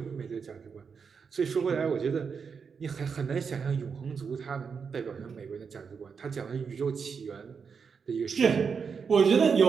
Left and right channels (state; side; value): quieter; left; 6.0 dB